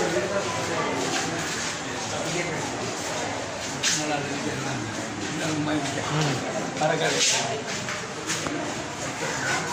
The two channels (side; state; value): both; identical; correlation 1.00